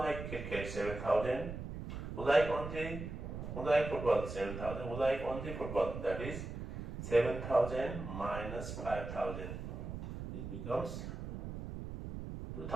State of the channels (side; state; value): right; noise; rumble, 7 dB below the sound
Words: cricket 7,000? Who like football 7,000? Who like only football? That is 7,000 minus 5,000. It becomes